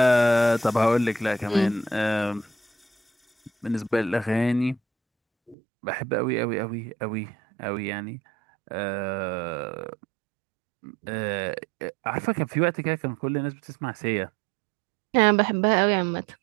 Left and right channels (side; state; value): left; drops out; at 5.6 s